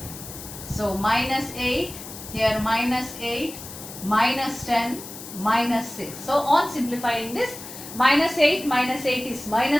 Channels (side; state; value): left; noise; hiss, 13 dB below the sound